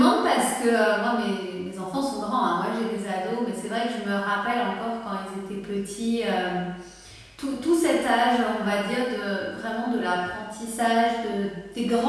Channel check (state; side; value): identical; both; correlation 1.00